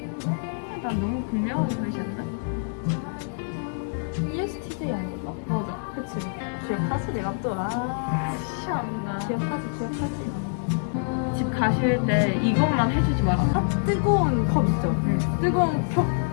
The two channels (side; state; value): right; silent; digital silence